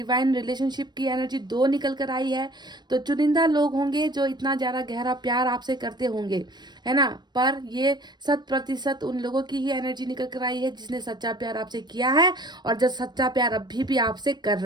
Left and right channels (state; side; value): late; left; 0.21 ms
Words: relationship की एनर्जी 2 निकल कर आई है। तो चुनिंदा लोग होंगे जो इतना ज़्यादा गहरा प्यार आपसे करते होंगे, है ना। पर ये 100% उन लोगों की ही एनर्जी निकल कर आई है जिसने सच्चा प्यार आपसे किया है, और जो सच्चा प्यार अभी भी आपसे कर